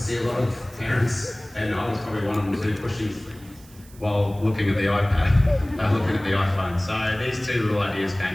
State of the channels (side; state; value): right; noise; hiss, 24 dB below the sound